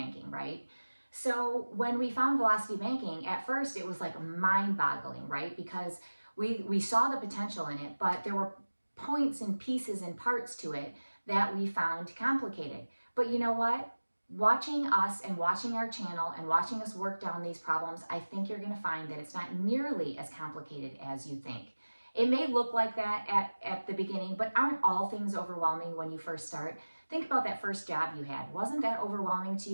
right? So when we found velocity banking, at first it was like mind-boggling, right? Because we saw the potential in it, but there were points and pieces and parts to it that we found complicated. But you know what? Watching us and watching our channel and watching us work down these problems, I think you're going to find that it's not nearly as complicated as you think. It may look like that at the beginning, but aren't all things overwhelming when you first start? Think about that first job you had. Wasn't that overwhelming to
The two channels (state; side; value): inverted; both; correlation -1.00